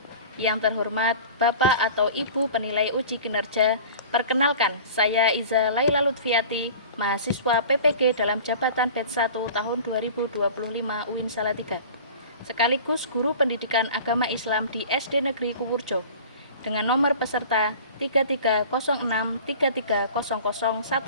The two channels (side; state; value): both; inverted; correlation -0.41